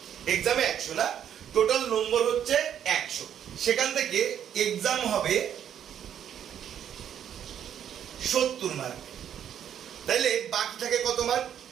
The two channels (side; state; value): left; quieter; 9.5 dB